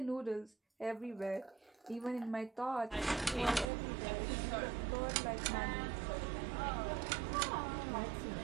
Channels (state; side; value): drops out; left; at 3.7 s